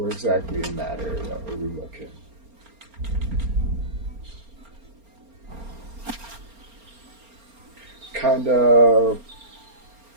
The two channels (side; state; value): left; late; 4.3 ms